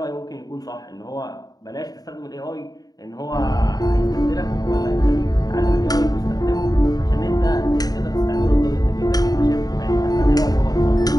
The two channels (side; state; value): right; late; 0.18 ms